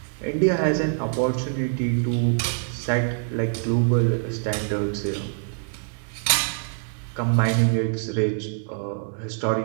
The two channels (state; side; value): silent; left; 62 dB below the other